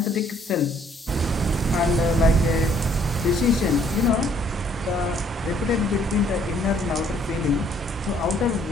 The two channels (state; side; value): normal; both; correlation 0.63